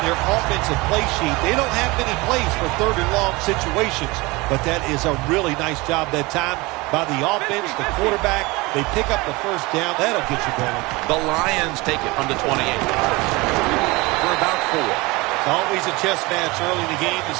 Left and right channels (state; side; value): quieter; left; 23.4 dB